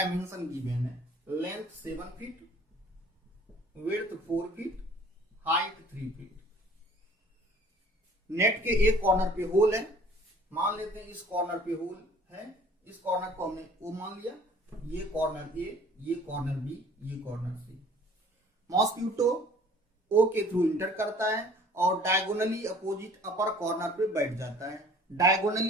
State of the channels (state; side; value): normal; both; correlation 0.51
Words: गिवन है। Length 7 feet, width 4 feet, height 3 feet. Net के एक कॉर्नर पे होल है। मान लेते हैं इस कॉर्नर पे होल है। इस कॉर्नर को हमने O मान लिया। ये कॉर्नर A, ये कॉर्नर B, ये कॉर्नर C। मॉस्क्यूटो O के थ्रू इंटर करता है और डायगोनली अपोजिट अपर कॉर्नर पे बैठ जाता है।